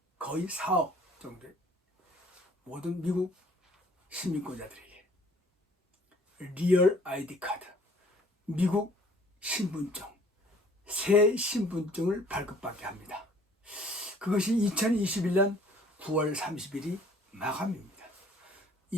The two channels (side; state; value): both; normal; correlation 0.56